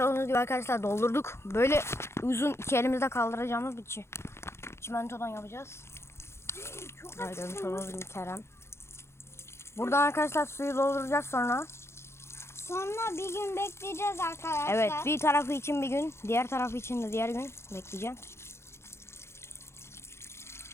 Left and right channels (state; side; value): late; right; 0.13 ms